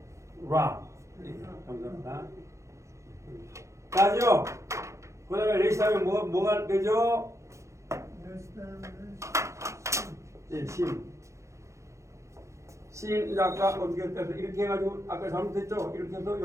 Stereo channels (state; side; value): late; left; 0.14 ms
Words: 라. 네, 감사합니다. 나죠? 그 다음에 레시 하면 뭐가 되죠? 네, 심. 심, 이제 아까 어떻게 해서 이렇게 해가지고 아까 잘못했죠? 이렇게 해서